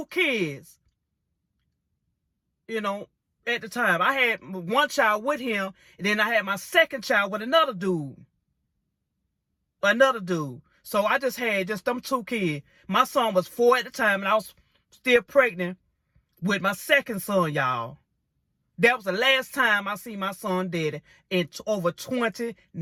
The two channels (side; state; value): both; identical; correlation 1.00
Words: kids, you know, at the time. I had one child with him, and then I had my second child with another dude. So I just had them 2 kids. My son was 4 at the time, and I was still pregnant with my second son, y'all. That was the last time I seen my son daddy in over